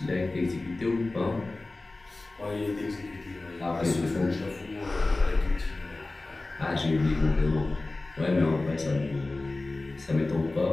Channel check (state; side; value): quieter; right; 3.1 dB